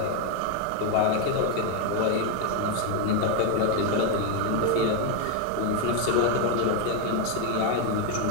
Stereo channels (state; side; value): different; both; correlation 0.01